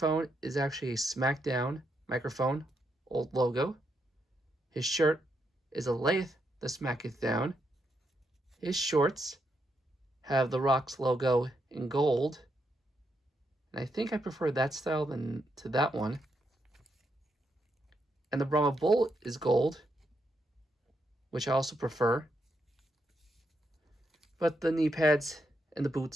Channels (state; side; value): normal; both; correlation 0.80